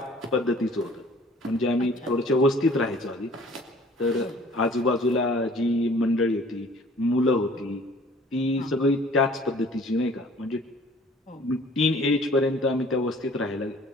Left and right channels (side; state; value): both; normal; correlation 0.52